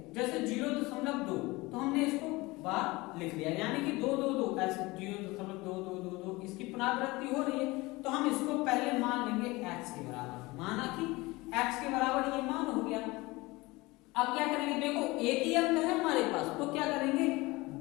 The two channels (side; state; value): right; quieter; 22.1 dB